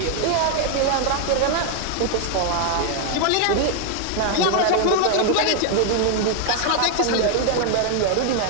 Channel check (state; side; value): different; both; correlation 0.00